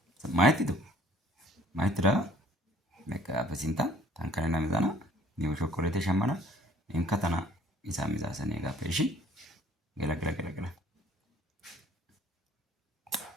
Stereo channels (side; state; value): both; normal; correlation 0.56